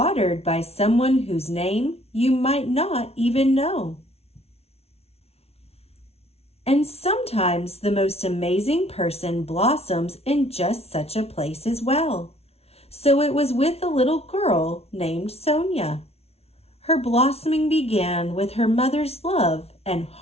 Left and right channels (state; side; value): late; right; 0.30 ms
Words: by someone whose name you might not even know. And sometimes the most amazing person blossoms in just such a place as well. So it was with a little girl named Sonia. Her blossoming began with her mother's love and